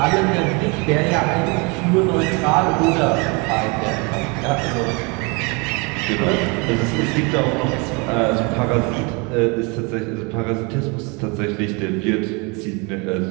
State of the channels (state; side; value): quieter; left; 30.1 dB